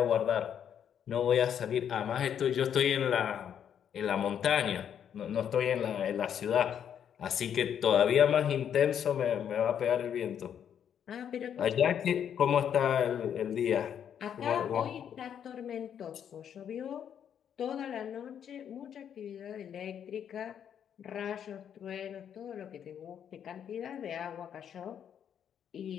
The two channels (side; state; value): right; quieter; 8.8 dB